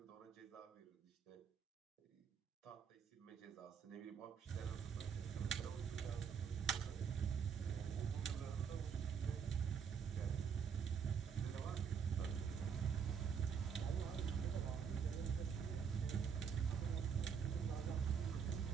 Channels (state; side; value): quieter; left; 6.8 dB